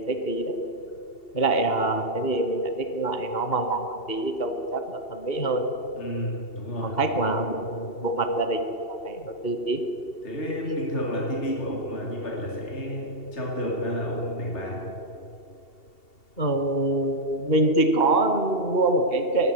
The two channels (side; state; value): right; late; 2.7 ms